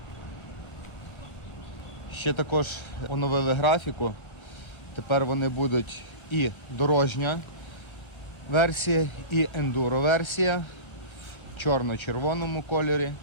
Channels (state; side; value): late; right; 1.2 ms